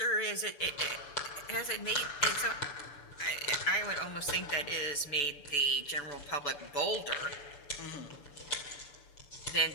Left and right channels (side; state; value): right; late; 6.9 ms